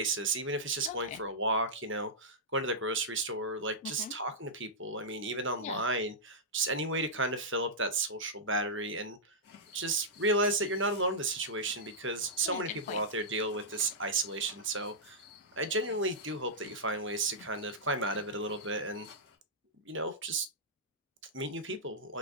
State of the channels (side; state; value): both; normal; correlation -0.12